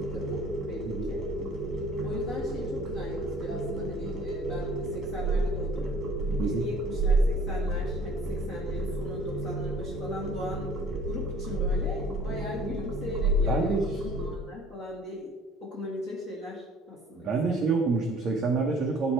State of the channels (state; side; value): normal; both; correlation 0.52